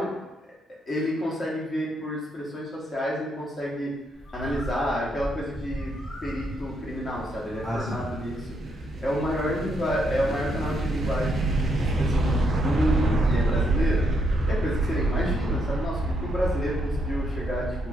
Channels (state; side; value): normal; both; correlation 0.77